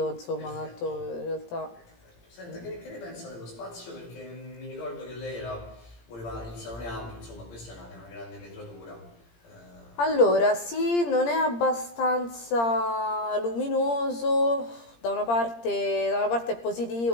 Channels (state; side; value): late; right; 17 ms